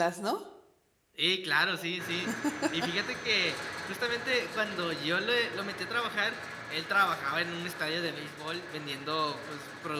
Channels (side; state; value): both; identical; correlation 1.00